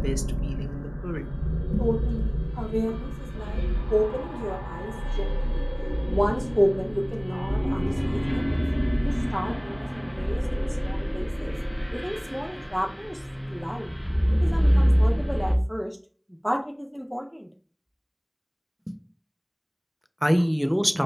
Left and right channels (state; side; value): identical; both; correlation 1.00